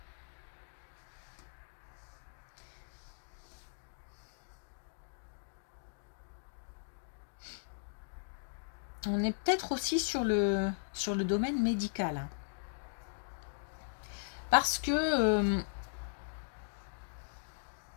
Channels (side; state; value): right; silent; digital silence